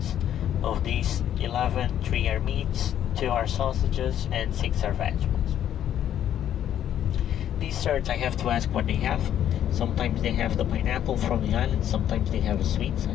Of these 11, 3 are meats, 2 are sausages, and 6 are vegetables. Desserts, I have to ask what they have. Sometimes they have the pineapple from the island, sometimes they have a sweet, so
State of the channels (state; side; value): quieter; right; 10.6 dB